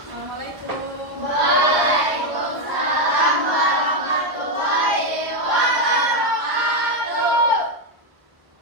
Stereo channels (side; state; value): left; late; 1.3 ms